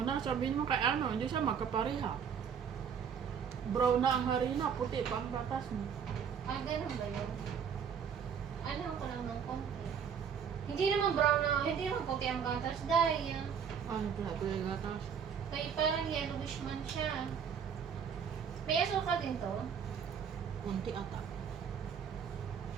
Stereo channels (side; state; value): left; quieter; 7.3 dB